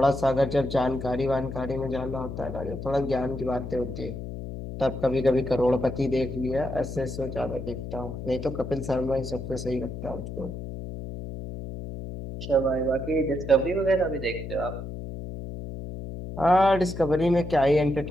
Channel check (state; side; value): noise; left; hum, 8 dB below the sound